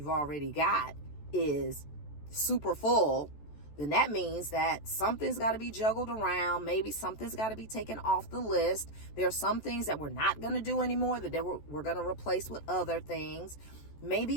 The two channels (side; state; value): right; late; 14 ms